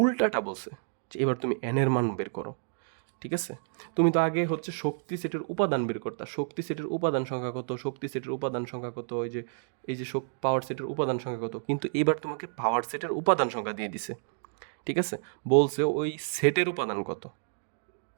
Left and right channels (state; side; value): silent; left; digital silence